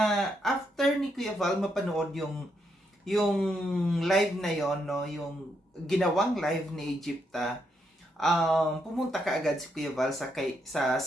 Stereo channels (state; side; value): normal; both; correlation 0.79